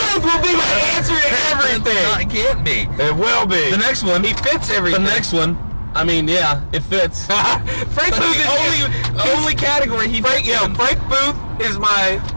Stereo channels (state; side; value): inverted; both; correlation -1.00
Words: will be my answer to everything. No, it can't be. It will be. The next one. He fits everything. The next one. I mean, yeah, it fits. Frank That's Booth the is only category he fits in. Frank Booth is my.